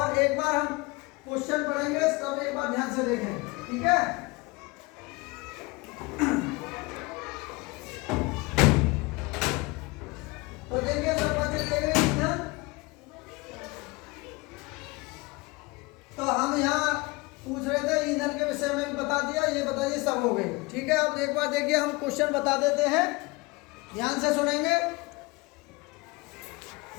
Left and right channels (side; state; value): right; quieter; 24.8 dB